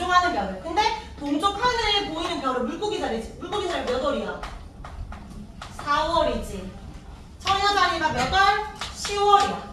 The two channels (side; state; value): both; identical; correlation 1.00